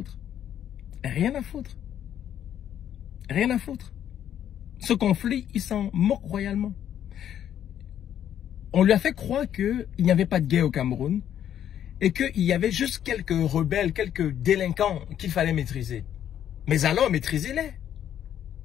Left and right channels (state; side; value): quieter; right; 10.2 dB